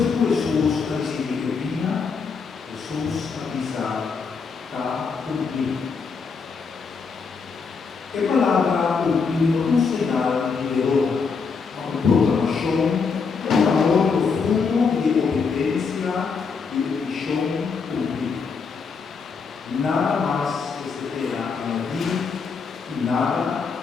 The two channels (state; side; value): quieter; right; 5.3 dB